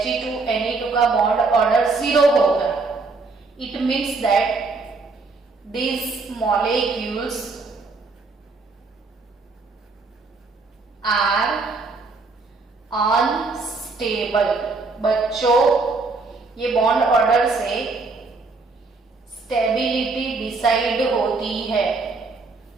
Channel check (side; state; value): left; quieter; 3.9 dB